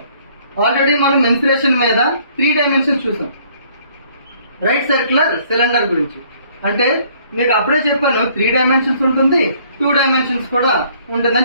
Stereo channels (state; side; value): inverted; both; correlation -0.61